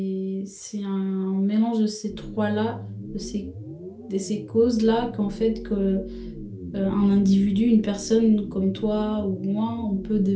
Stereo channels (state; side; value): identical; both; correlation 1.00